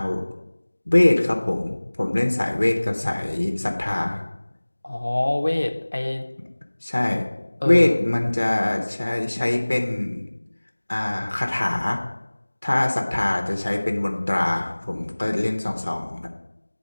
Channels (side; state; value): both; inverted; correlation -1.00